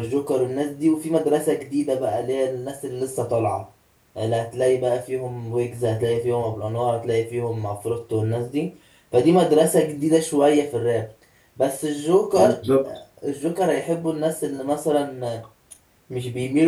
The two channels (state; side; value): identical; both; correlation 1.00